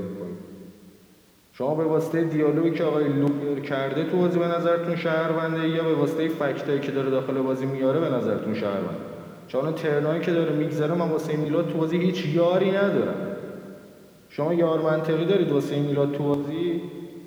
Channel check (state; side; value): identical; both; correlation 1.00